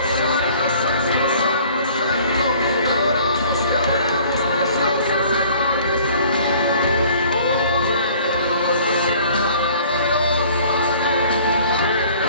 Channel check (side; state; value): both; inverted; correlation -0.53